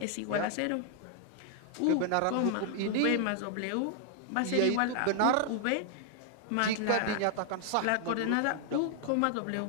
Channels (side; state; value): both; different; correlation 0.00